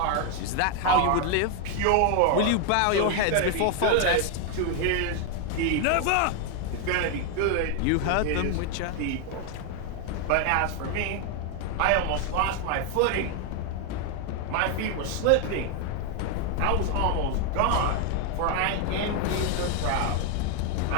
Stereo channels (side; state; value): both; different; correlation 0.01